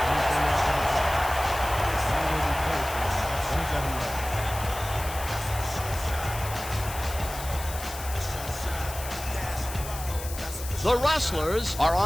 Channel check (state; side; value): noise; left; hiss, 11 dB below the sound